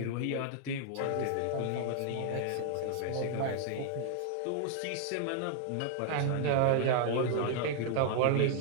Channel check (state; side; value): different; both; correlation 0.00